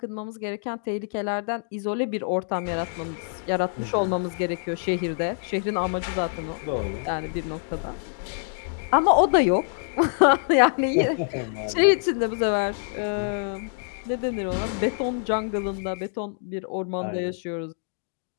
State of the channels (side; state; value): right; silent; digital silence